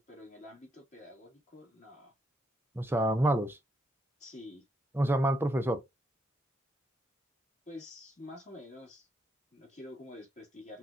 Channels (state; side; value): normal; both; correlation 0.79